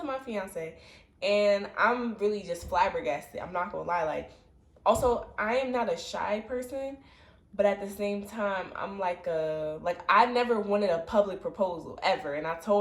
my fiance. And I'm really just flabbergasted. I'm not gonna lie. Like, also, I am not a shy person, but at the same time, I'm like I never wanted a public proposal ever. And I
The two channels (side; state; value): both; identical; correlation 1.00